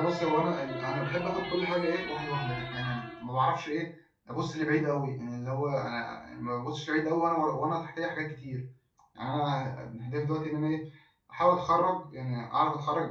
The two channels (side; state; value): both; identical; correlation 1.00